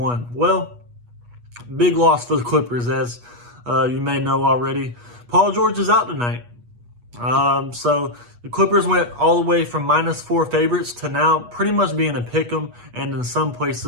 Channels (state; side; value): late; left; 8.3 ms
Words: Well, big loss for the Clippers, as you may know already. Paul George is out tonight. So the Clippers went all the way from -4 favorites to now pretty much being a pick'em, and in some